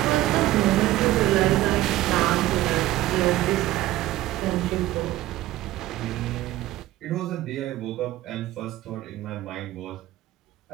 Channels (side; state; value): left; quieter; 15.8 dB